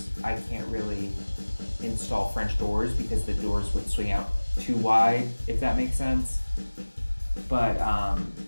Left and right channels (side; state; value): both; inverted; correlation -1.00